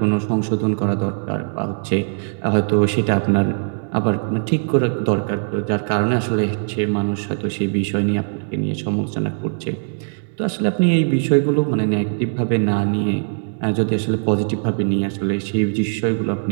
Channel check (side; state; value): left; silent; digital silence